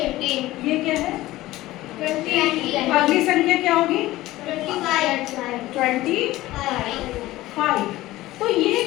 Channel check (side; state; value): right; quieter; 17.0 dB